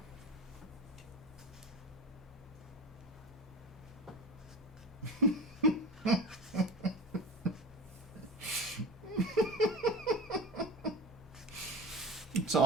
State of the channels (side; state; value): both; normal; correlation 0.31